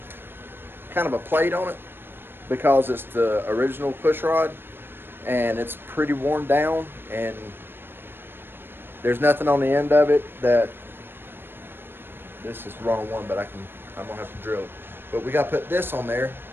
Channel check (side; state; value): left; late; 0.10 ms